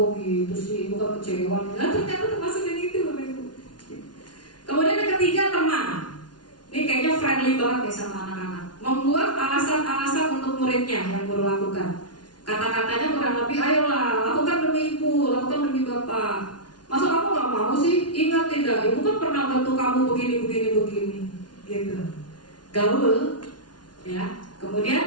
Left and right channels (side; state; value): right; late; 0.70 ms